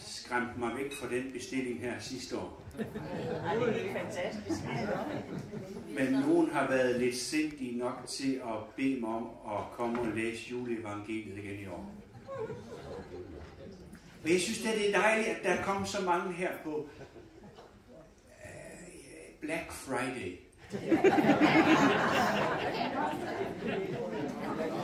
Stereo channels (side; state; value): both; identical; correlation 1.00